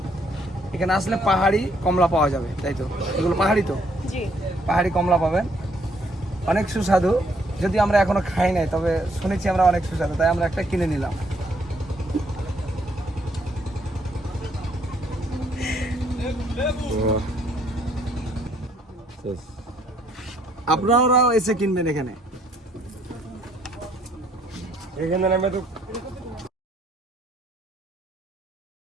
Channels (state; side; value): normal; both; correlation 0.68